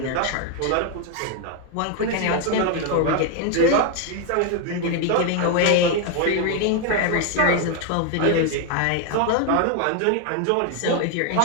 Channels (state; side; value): different; both; correlation 0.01